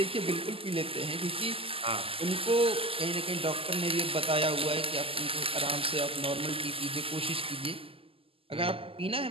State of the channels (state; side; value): late; left; 0.27 ms